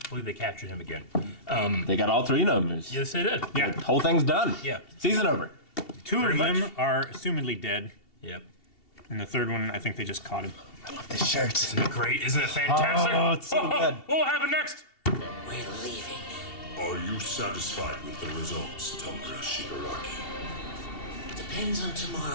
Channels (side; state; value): right; late; 2.7 ms